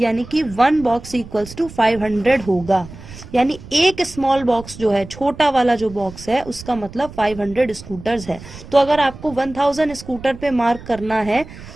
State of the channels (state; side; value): noise; right; rumble, 16 dB below the sound